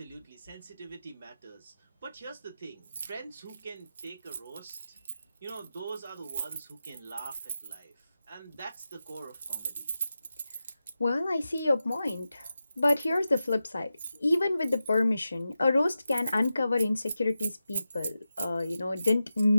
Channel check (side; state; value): both; inverted; correlation -0.92